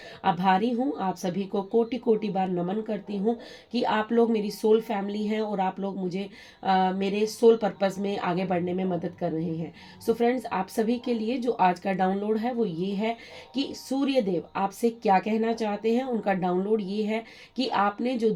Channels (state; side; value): identical; both; correlation 1.00